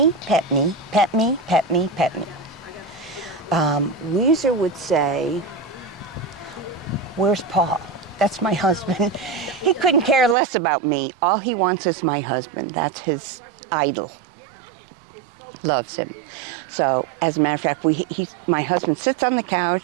pet me, pet me, pet me, pet me. Weezer would say, where's Paul? That's my husband. He couldn't care less about me. All he wants is my husband. That's his idol. Loves him. So, as a matter of fact, my husband sits on the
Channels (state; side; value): drops out; left; at 10.4 s